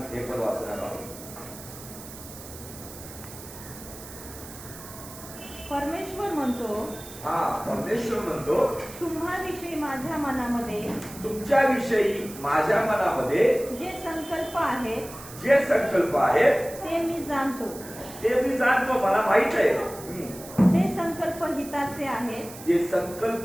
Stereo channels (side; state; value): right; noise; hiss, 15 dB below the sound